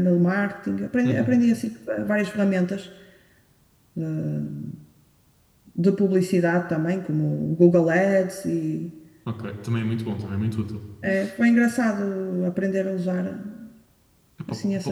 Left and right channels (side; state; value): both; identical; correlation 1.00